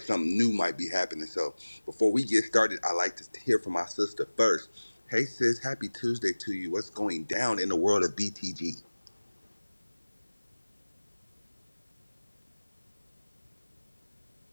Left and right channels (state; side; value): inverted; both; correlation -1.00